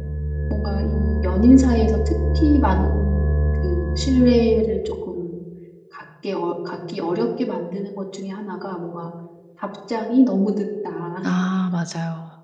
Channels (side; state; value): both; identical; correlation 1.00